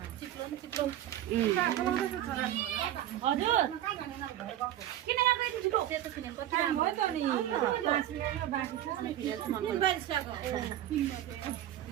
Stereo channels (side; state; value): left; quieter; 12.4 dB